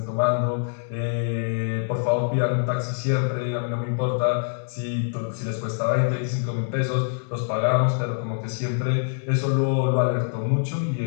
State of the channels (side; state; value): right; silent; digital silence